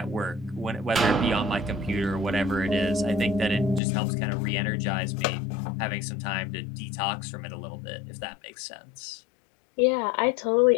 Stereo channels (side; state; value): right; drops out; at 3.8 s